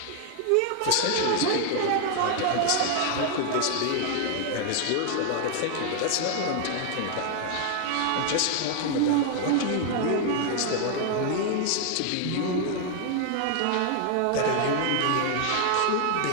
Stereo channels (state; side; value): different; both; correlation 0.00